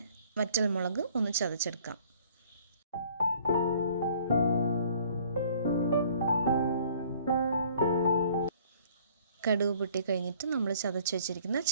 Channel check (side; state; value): both; inverted; correlation -0.56